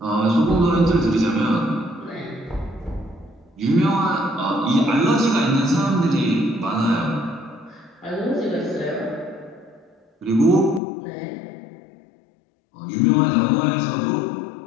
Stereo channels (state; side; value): drops out; right; at 10.8 s